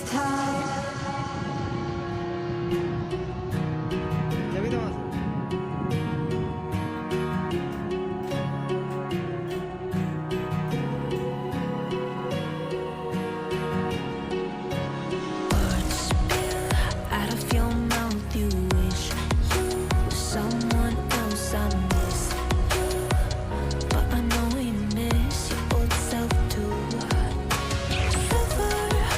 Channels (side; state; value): both; identical; correlation 1.00